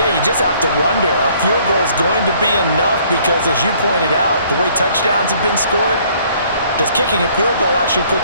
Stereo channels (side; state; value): both; inverted; correlation -0.60